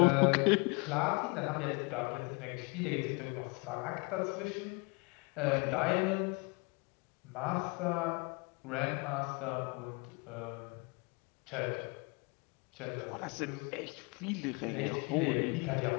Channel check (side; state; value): right; quieter; 29.7 dB